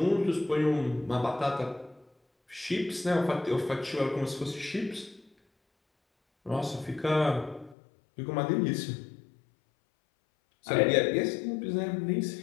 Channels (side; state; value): right; drops out; at 7.8 s